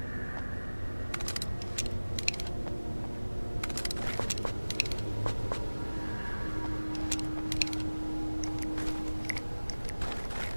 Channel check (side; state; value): both; inverted; correlation -1.00